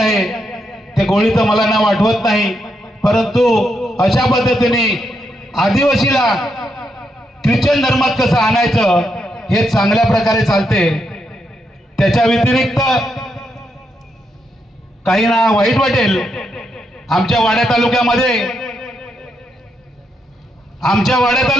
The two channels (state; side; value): normal; both; correlation 0.80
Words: त्या गोळीचं मला नाव आठवत नाही, परंतु अशा पद्धतीने आदिवासीला ख्रिश्चन धर्मात कसं आणायचं हे चांगल्या प्रकारे चालते। त्याच्या व्यतिरिक्त काही ना वाईट वाटेल, आमच्या वाड्या तालुक्यामध्ये